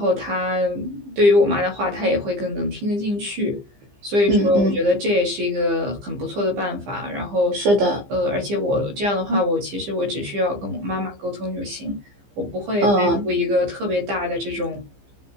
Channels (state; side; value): late; left; 15 ms